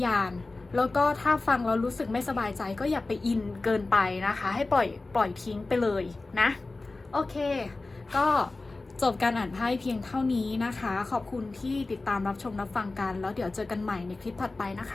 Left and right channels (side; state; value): right; quieter; 3.4 dB